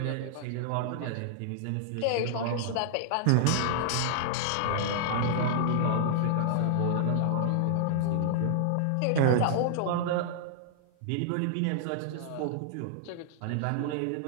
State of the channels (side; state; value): both; different; correlation -0.01